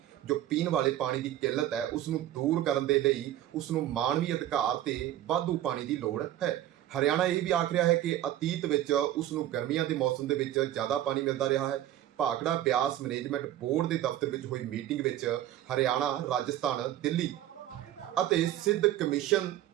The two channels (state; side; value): quieter; left; 12.8 dB